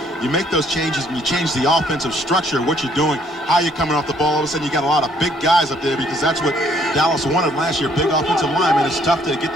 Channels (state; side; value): normal; both; correlation 0.65